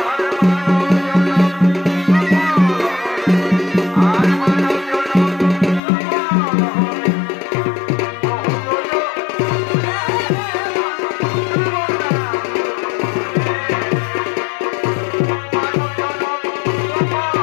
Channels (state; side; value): drops out; right; at 5.8 s